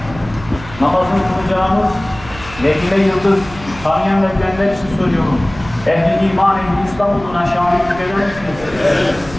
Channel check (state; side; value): noise; right; hum, 16 dB below the sound